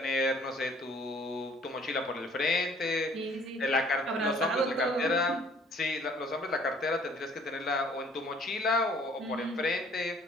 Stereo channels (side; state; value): both; normal; correlation 0.57